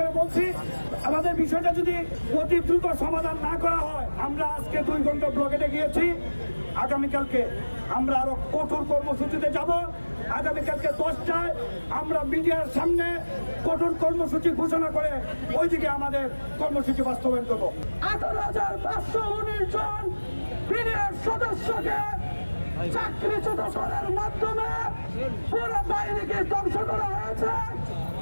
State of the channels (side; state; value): both; inverted; correlation -1.00